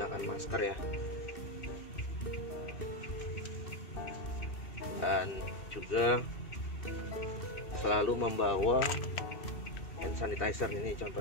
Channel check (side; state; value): right; late; 2.6 ms